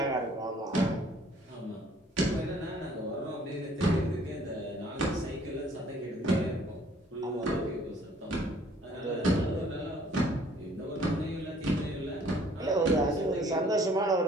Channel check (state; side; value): normal; both; correlation 0.58